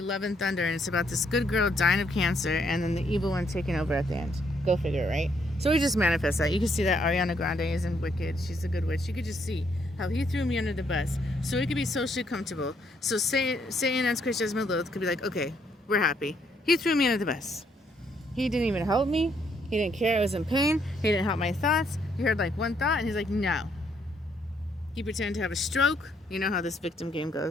Love and Thunder, and it's about this good girl dying of cancer and then the evil one taking over at the end. Go figure, right? So we just manifest that. You can see that Ariana Grande is in Wicked. She's a good witch. You could just see how he threw me under the bus so we could be socially comfortable. So Satan and Chris Jasmine Loth could be like, okay, we're happy. He threw me under the bus. He didn't even help me. He didn't care I was in pain. He didn't help my thoughts. He heard like one thought and he's like, no. He pretended to have a stroke. You know how this victim game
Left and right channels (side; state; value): both; normal; correlation 0.72